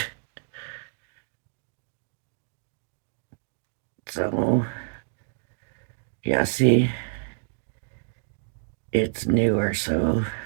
So, yeah, see, it's newer, so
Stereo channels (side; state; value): left; silent; digital silence